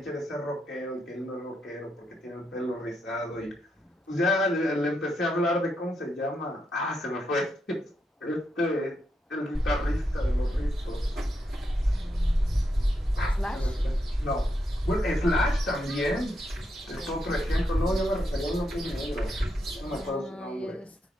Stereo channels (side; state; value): both; normal; correlation 0.82